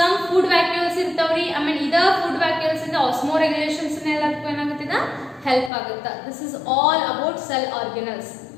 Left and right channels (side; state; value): right; drops out; at 5.7 s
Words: food vacuoles ಇರ್ತಾವ್ರಿ ಆಮೇಲೆ ಇದ ಫುಡ್ ವ್ಯಾಕ್ಯೂಲ್ಸ್ ಇಂದ ಆಸ್ಮೋರೆಗ್ಯುಲೇಷನ್ಸ್ ಎಲ್ಲದಕ್ಕೂ ಏನಾಗುತ್ತಿದ ಹೆಲ್ಪ್ ಆಗುತ್ತೆ this is all about cell organelles